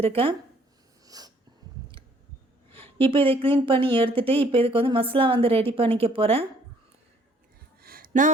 இப்போ இதை க்ளீன் பண்ணி எடுத்துகிட்டு இப்போ இதுக்கு வந்து மசாலா வந்து ரெடி பண்ணிக்க போகிறேன். நான்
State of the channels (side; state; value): both; normal; correlation 0.62